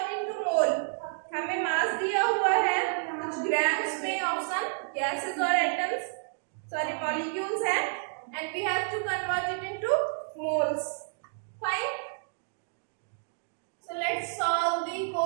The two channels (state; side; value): silent; left; digital silence